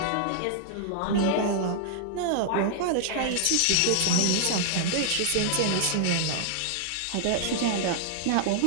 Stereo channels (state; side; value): different; both; correlation -0.01